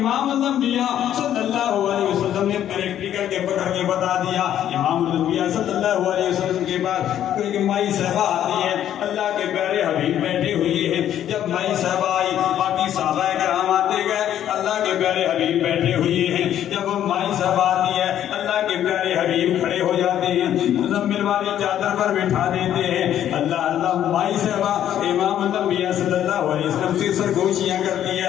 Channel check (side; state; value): right; quieter; 10.9 dB